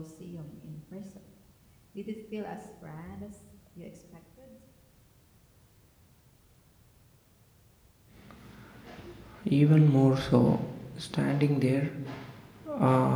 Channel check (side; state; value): both; identical; correlation 1.00